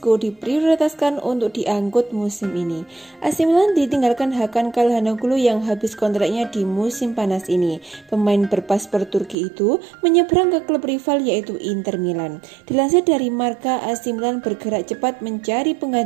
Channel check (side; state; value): left; drops out; at 9.3 s